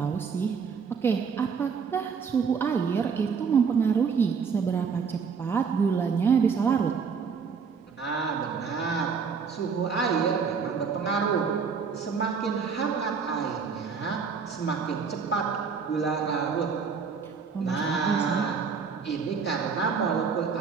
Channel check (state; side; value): quieter; left; 5.8 dB